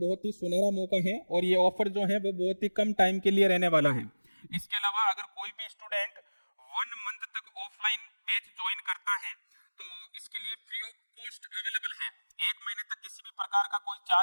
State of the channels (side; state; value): both; inverted; correlation -1.00